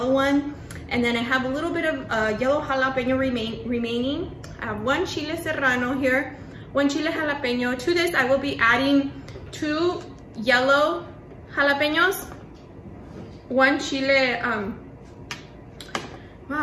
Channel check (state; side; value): identical; both; correlation 1.00